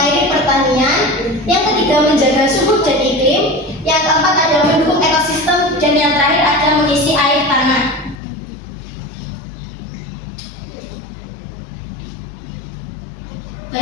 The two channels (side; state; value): right; drops out; at 8.2 s